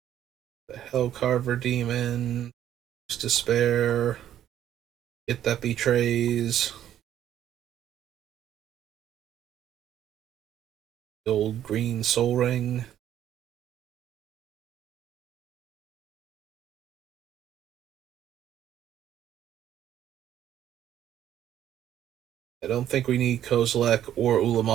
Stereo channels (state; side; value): quieter; left; 11.1 dB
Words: The Hellcarver Demon. Despair. It that betrays. The old green Soul Ring. I don't think we need Kozilek or